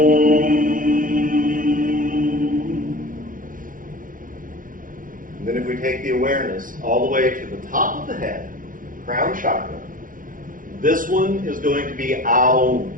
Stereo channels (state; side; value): late; left; 0.40 ms